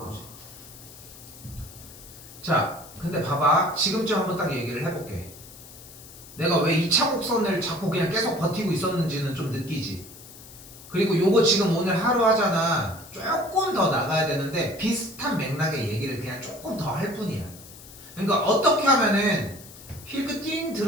자, 근데 봐봐. 지금쯤 한번 딱 얘기를 해볼게. 내가 왜 2차 곡선을 자꾸 그냥 계속 버티고 있었는지는 좀 느끼지. 그리고 요거 지금 오늘 하루 하잖아. 조금 더 나가야 되는데 비슷한 맥락의 얘기를 그냥 조금 더 할 뿐이야. 그러니까 어떻게 하면은 힐크 띵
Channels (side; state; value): left; noise; hiss, 18 dB below the sound